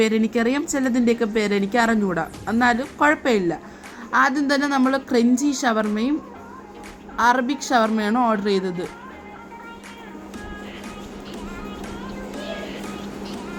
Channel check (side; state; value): both; identical; correlation 1.00